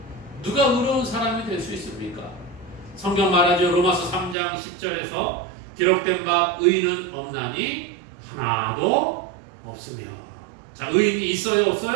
누가 의로운 사람이 될 수 있습니까? 성경 말하죠. 로마서 3장 10절에서 기록된 바 의인은 없나니 하나도 없으며. 자, 의인이 있어요?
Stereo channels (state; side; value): drops out; left; at 4.4 s